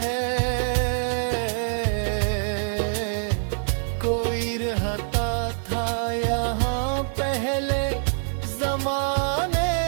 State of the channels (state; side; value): silent; left; 58 dB below the other